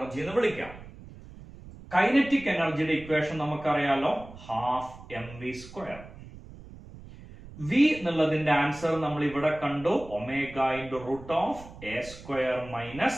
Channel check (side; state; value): right; noise; rumble, 17 dB below the sound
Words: എന്ന് വിളിക്കുക. കൈനറ്റിക് എനർജിയുടെ ഇക്വേഷൻ നമുക്കറിയാലോ, half M V square. V എന്നുള്ളതിന്റെ ആൻസർ നമ്മൾ ഇവിടെ കണ്ടു, omega into root of A square